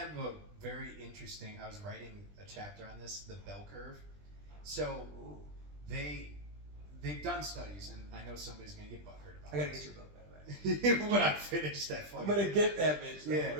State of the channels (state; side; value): late; left; 20 ms